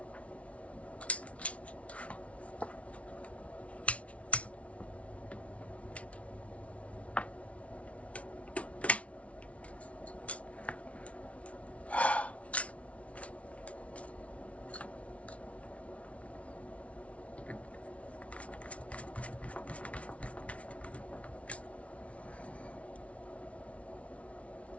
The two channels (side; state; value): right; late; 0.064 ms